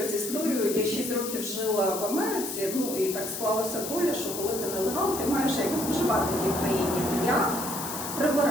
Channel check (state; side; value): noise; left; hiss, 6 dB below the sound